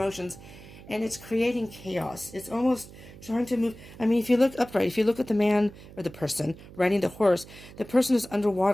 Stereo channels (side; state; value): right; noise; hum, 18 dB below the sound